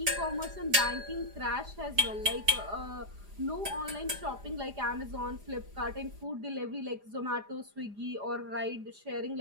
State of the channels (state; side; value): late; left; 4.9 ms